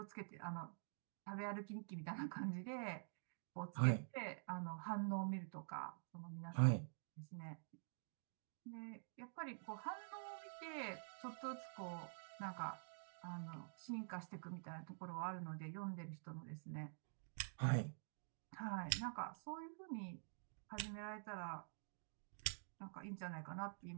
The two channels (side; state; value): left; silent; digital silence